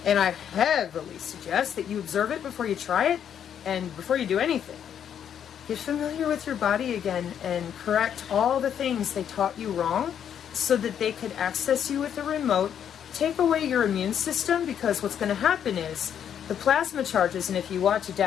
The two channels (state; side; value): quieter; right; 9.0 dB